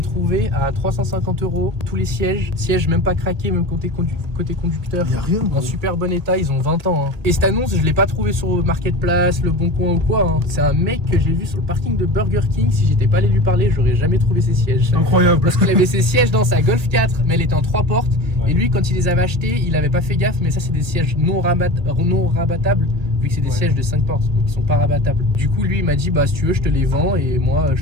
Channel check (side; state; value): left; late; 1.9 ms